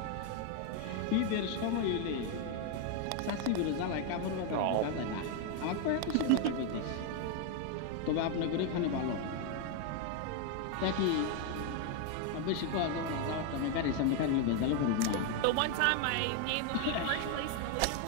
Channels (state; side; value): different; both; correlation 0.01